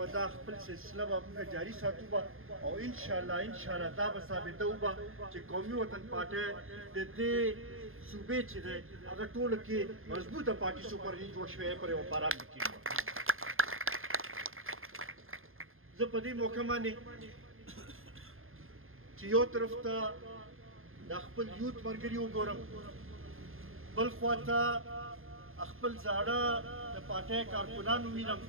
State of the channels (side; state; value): left; late; 0.60 ms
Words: دا خپل سلسله به موږ جاري ساتو به او انشاءالله دا به ثابتوو به چې قومي وطن پارټۍ د دې صوبې چې دی هغه ټولو کې مضبوطه پارټي سوپرني جوړ شوی پر یو باران کېږي زه په دې موقع باندې چې یو طرف ته د خپل یوت ملګري وګورم بل خواته خپل زاړه د پارټۍ کارکونان ووینم